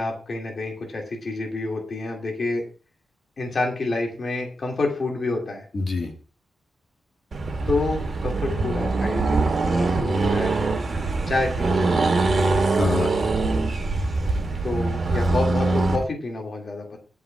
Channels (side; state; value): both; normal; correlation 0.87